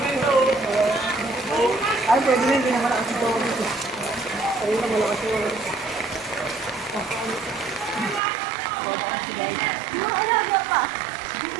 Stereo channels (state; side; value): drops out; left; at 8.2 s